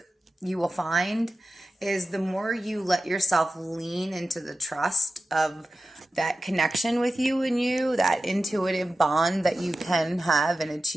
you will find is the more you let yourself lean into the trust of that connection with you and you, that intuitive bond that you can have and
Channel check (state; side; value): normal; both; correlation 0.93